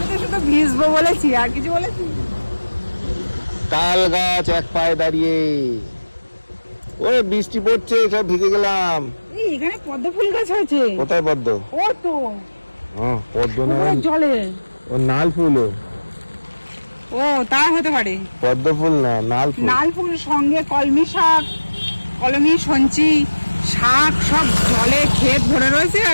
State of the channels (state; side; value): inverted; both; correlation -1.00